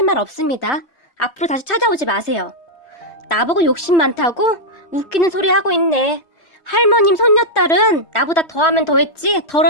말 없습니다. 앞으로 다시 찾아오지 마세요. 나보고 욕심 많다고? 웃기는 소리 하고 있네. 할머님 손녀딸은 나보다 더하면 더했지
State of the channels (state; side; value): late; right; 3.2 ms